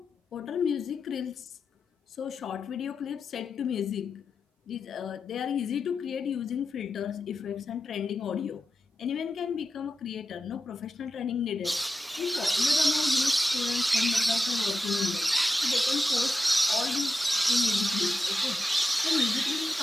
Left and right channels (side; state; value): both; normal; correlation 0.90